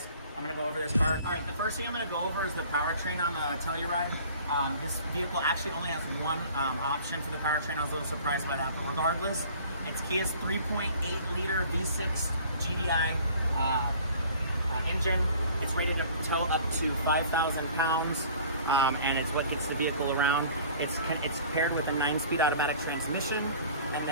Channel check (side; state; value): both; inverted; correlation -0.49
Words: I'm going to go over this car. All right, the first thing I'm going to go over is the powertrain on the Telluride. This vehicle actually only has one option for the powertrain. I was a little surprised by that, but regardless, it's Kia's 3.8 liter V6 GDI engine. It's rated to tow up to 5,000 pounds, and it's what gets the vehicle around. It's paired with a 9-speed automatic transmission, and